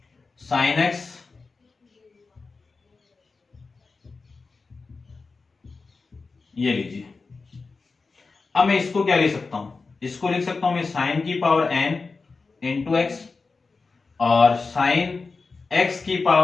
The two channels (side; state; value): right; quieter; 4.2 dB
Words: साइन एक्स ये लीजिए। अब मैं इसको क्या लिख सकता हूं, इसको लिख सकता हूं मैं साइन की पावर n इंटू एक्स और साइन x की